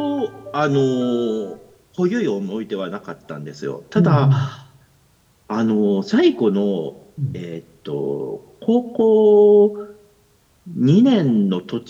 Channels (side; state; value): both; identical; correlation 1.00